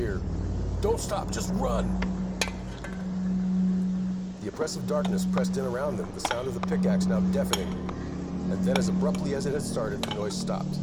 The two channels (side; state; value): both; identical; correlation 1.00